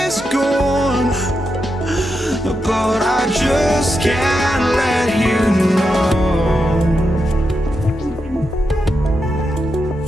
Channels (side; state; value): both; normal; correlation 0.86